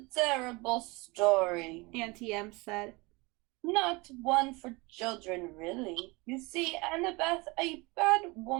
terrible story. Auntie Em said. Not one for children, really. You see, Annabeth, a bad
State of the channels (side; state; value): left; quieter; 25.1 dB